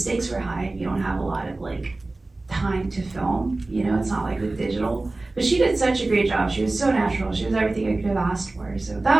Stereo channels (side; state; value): left; quieter; 3.1 dB